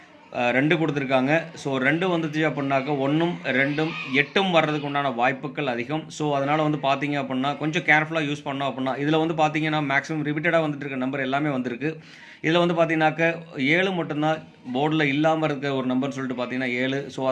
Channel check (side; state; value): both; identical; correlation 1.00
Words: 2 கொடுத்துருக்காங்க. ஸோ 2 வந்துச்சு அப்படின்னாக்க 1ம் 2ம் 8ம் வர்றதுக்கு உண்டான வாய்ப்புகள் அதிகம். ஸோ அதனால் வந்து பார்த்தீங்க அப்படின்னா கொஞ்சம் கேர்ஃபுல்லாக யூஸ் பண்ணோம் அப்படின்னா இதில் வந்து பார்த்தீங்கன்னா மேக்ஸிமம் ரிப்பீட்டடாக வந்துட்டு இருக்க நம்பர் எல்லாமே வந்திருக்கு. இதில் வந்து பார்த்தீங்கன்னாக்க 7 மட்டும்தான் போர்டில் இல்லாமல் இருக்க ஒரு நம்பர்னு சொல்லிட்டு பார்த்தீங்கன்னா 7. ஸோ